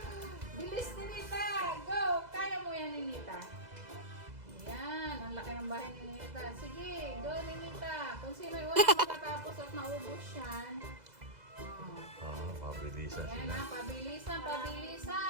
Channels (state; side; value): late; left; 2.0 ms